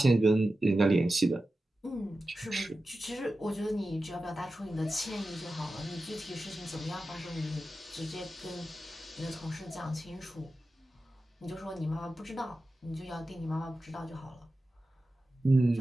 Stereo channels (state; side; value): normal; both; correlation 0.93